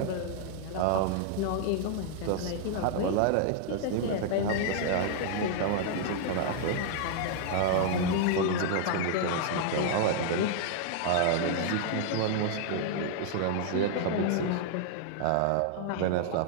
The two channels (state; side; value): different; both; correlation -0.01